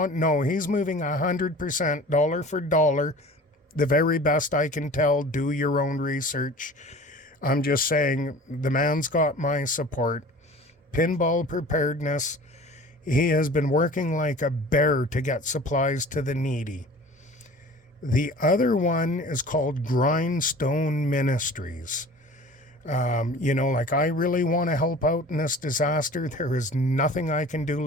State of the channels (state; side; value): normal; both; correlation 0.42